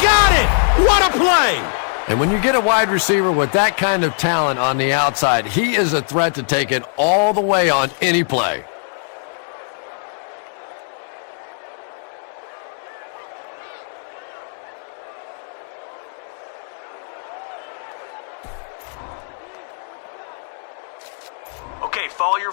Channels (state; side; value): silent; right; 65 dB below the other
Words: got it! What a play! And when you get a wide receiver with that kind of talent on the outside, he is a threat to take it all the way on any play. Okay, follow